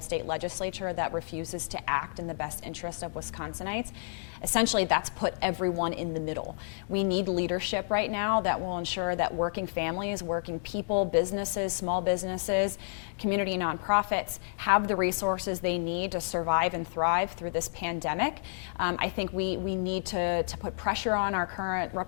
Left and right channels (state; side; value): silent; right; digital silence